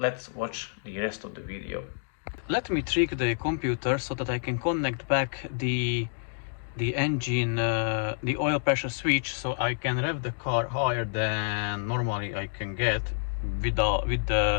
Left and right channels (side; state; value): right; silent; digital silence